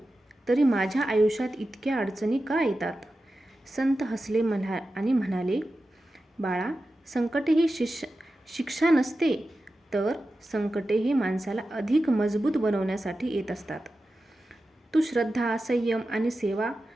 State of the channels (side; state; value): both; normal; correlation 0.92